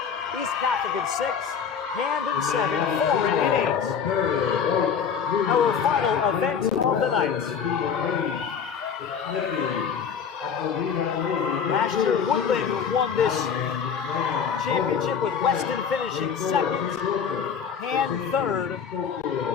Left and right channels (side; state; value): right; quieter; 6.9 dB